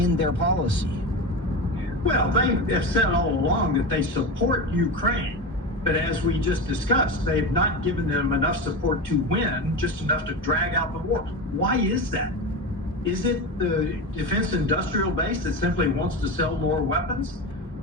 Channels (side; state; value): both; normal; correlation 0.22